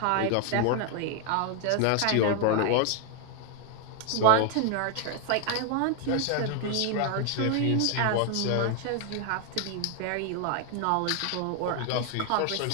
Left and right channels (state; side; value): different; both; correlation 0.01